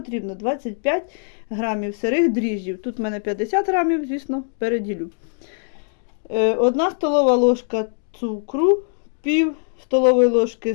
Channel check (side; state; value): right; silent; 64 dB below the other